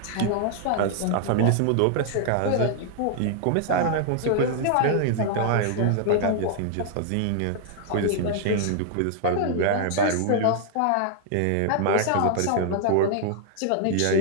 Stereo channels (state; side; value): different; both; correlation -0.01